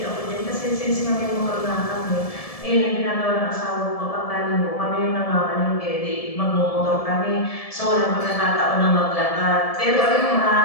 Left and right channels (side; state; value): right; late; 1.7 ms